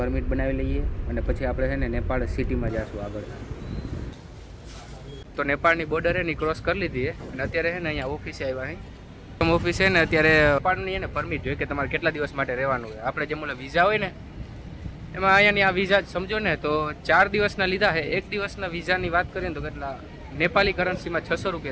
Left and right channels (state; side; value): identical; both; correlation 1.00